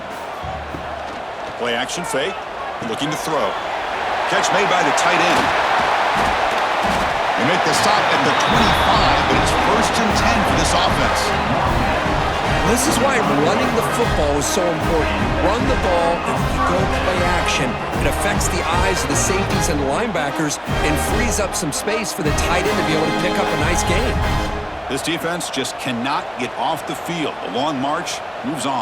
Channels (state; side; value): identical; both; correlation 1.00